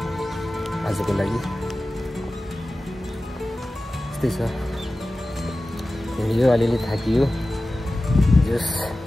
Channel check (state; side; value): normal; both; correlation 0.95